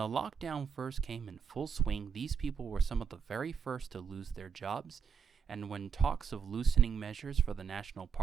lockdown first came in full swing, these people were some of the very first to lose their jobs, and when talks of loosening measures for the national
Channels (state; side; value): quieter; left; 6.6 dB